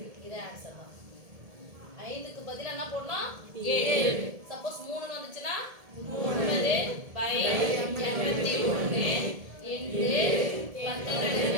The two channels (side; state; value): left; late; 1.7 ms